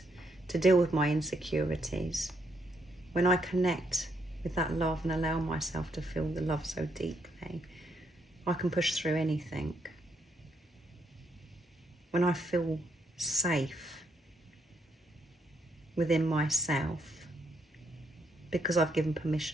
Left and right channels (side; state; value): both; normal; correlation 0.75